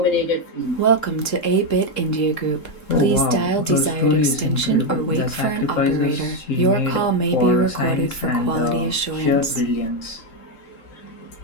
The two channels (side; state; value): right; late; 3.7 ms